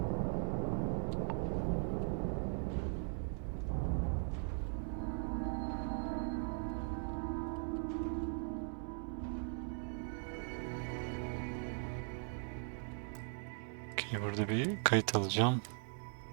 Okay, burada bir kayıt alacağım.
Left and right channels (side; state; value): left; silent; 51 dB below the other